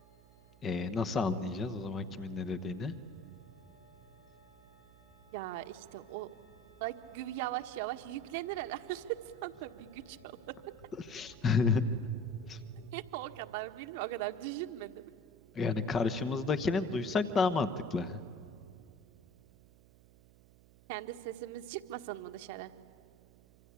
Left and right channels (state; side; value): noise; right; hum, 24 dB below the sound